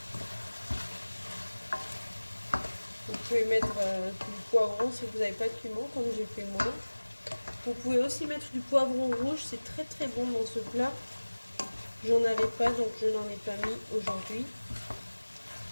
Vous pouvez mettre du poivron si vous n'avez pas de piment, comme j'ai fait moi. Vous pouvez aussi mettre du poivron rouge, c'est très bon dans ce plat. J'en avais pas, donc je n'en ai pas mis aujourd'hui.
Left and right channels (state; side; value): inverted; both; correlation -1.00